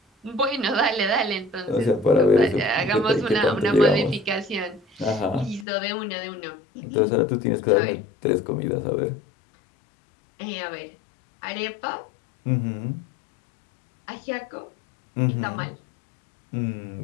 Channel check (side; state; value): right; drops out; at 5.7 s